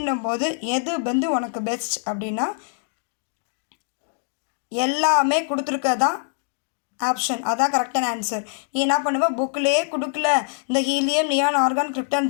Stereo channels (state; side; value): silent; right; 63 dB below the other